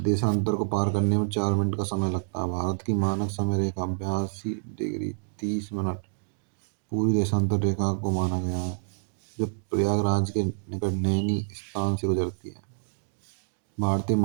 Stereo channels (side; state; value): left; silent; digital silence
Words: देशांतर को पार करने में 4 मिनट का समय लगता है। भारत की मानक समय रेखा 82 डिग्री 30 मिनट पूरी देशांतर रेखा को माना गया है, जब प्रयागराज के निकट नैनी स्थान से गुजरती है। भारतीय